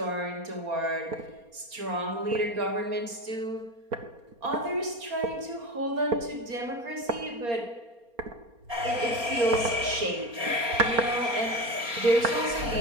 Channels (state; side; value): late; left; 4.3 ms